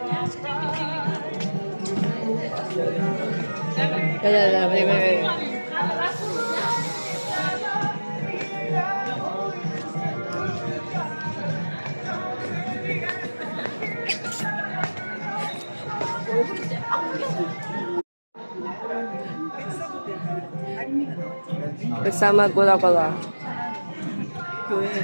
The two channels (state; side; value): inverted; both; correlation -1.00